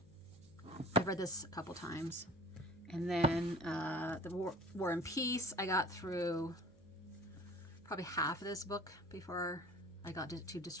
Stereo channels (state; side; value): noise; right; hum, 26 dB below the sound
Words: I've read this a couple times. And then the War and Peace, I got through probably half of this book before I got too